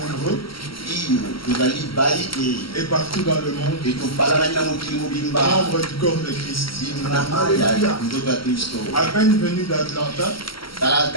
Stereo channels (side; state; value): right; late; 0.75 ms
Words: et partout dans le monde, membres du corps de Christ. À peine venu d'Atlanta,